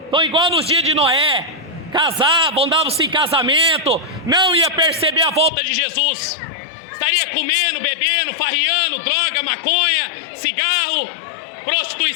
Estão igual nos dias de Noé. Casavam, davam-se em casamento. Não ia perceber a volta de Jesus. Estaria comendo, bebendo, farriando, droga, maconha, cigarro,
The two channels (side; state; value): right; drops out; at 5.5 s